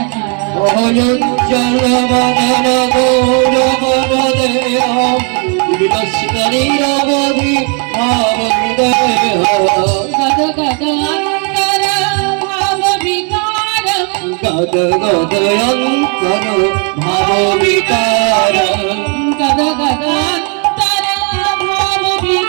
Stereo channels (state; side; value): quieter; left; 38.2 dB